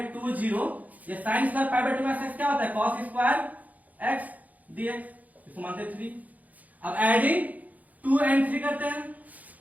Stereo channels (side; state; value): left; late; 0.077 ms